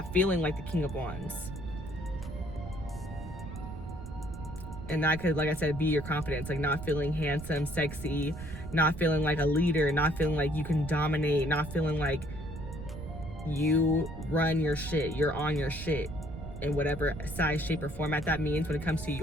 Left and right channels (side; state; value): right; noise; rumble, 11 dB below the sound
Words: feeling like the King of Wands. And that could, like I said, be your confidence, like not feeling handsome, sexy, not feeling like a leader, not feeling like you can dominate, not feeling like you run your shit, you're on your shit in whatever size, shape, or format that means when it comes to